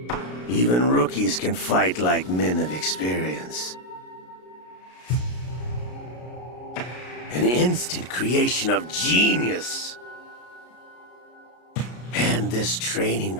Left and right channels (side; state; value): right; late; 33 ms